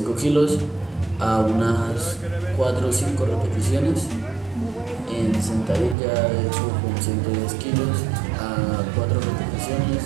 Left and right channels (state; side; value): drops out; left; at 6.0 s